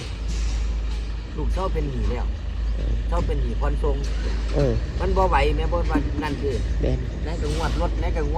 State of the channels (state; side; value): identical; both; correlation 1.00